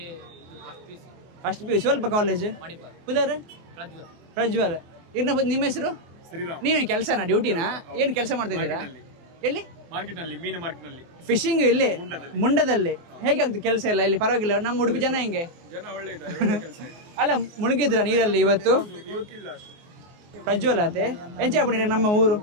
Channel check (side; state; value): left; late; 24 ms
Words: ಫಸ್ಟ್ ಪಿ ಸ್ವಲ್ಪ ಕಾಲೇಜ್ ಪುದರ್ ಪ್ರಜ್ವಲ್ ನಿಮ್ಮ ಹೆಸರು ನೀವೇನು ಕೆಲಸನಾ ಡ್ಯೂಟಿನಾ ಏನು ಕೆಲಸ ಮಾಡ್ತಾ ಇದ್ದೀರಾ ಎಲ್ಲಿ ಫಿಶಿಂಗ್ ಇಲ್ಲಿ ಮುಂಡದಲ್ಲಿ ಹೇಗೆ ಆಗ್ತದೆ ಕೆಲಸ ಎಲ್ಲ ಇಲ್ಲಿ ಪರವಾಗಿಲ್ಲ ನಮ್ಮ ಉಡುಪಿ ಜನ ಹೆಂಗೆ ಅಲ್ಲ ಮುಳುಗಿದ್ರ ನೀರಲ್ಲಿ ಇವತ್ತು ಪ್ರಜ್ವಲ್ ಆತೆ ಎಂಚ ಹಾಕೊಂಡಿರಿ ನಮ್ಮ ಊರು